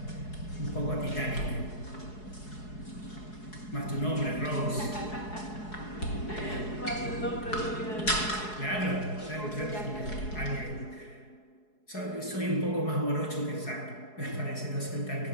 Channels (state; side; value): late; right; 4.7 ms